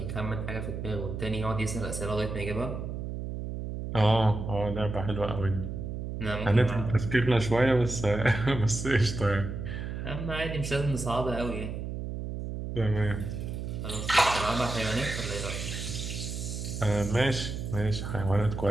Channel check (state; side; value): noise; right; hum, 5 dB below the sound